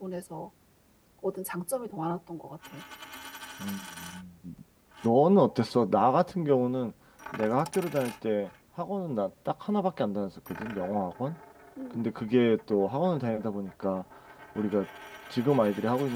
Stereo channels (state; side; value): identical; both; correlation 1.00